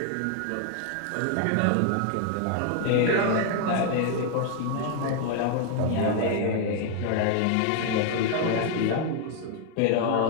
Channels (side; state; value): both; different; correlation 0.00